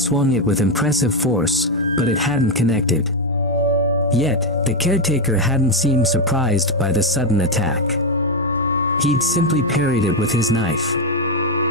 it with impressive force, but it hadn't connected. Yet, the caretaker hadn't seemed surprised by the sudden attack. He'd simply parried it with his knife.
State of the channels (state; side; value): normal; both; correlation 0.06